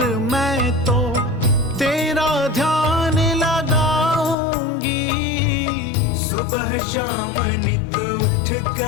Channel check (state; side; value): drops out; right; at 4.4 s